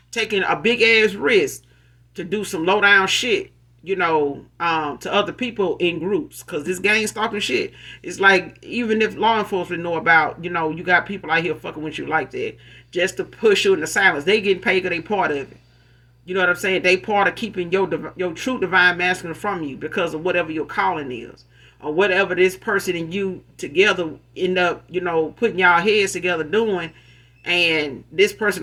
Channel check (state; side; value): identical; both; correlation 1.00